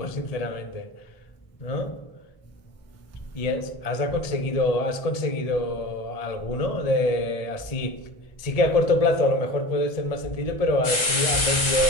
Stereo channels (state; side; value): late; right; 1.4 ms